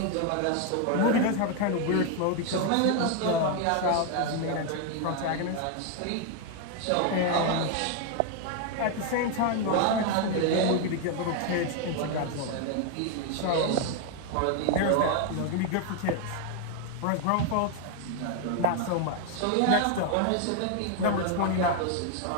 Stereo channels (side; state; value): both; different; correlation 0.01